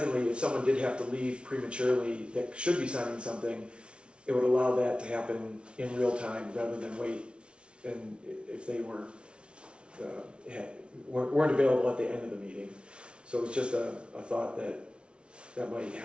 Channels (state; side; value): late; left; 0.058 ms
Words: if someone did have to leave prematurely that should be signing something, it would allow that to happen in real time rather than wait. And if they weren't available at the end of the meeting. So it's just a thought that might